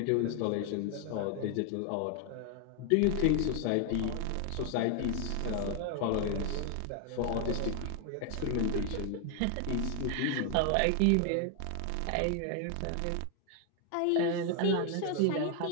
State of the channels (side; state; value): both; different; correlation 0.00